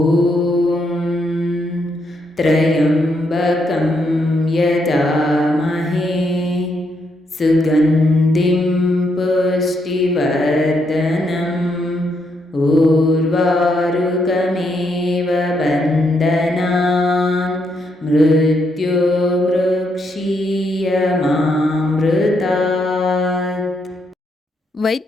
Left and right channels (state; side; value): normal; both; correlation 0.77